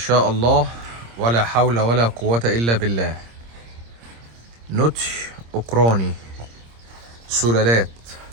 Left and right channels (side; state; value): left; late; 26 ms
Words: الله، ولا حول ولا قوة إلا بالله. نوتش أوكراني، سلالات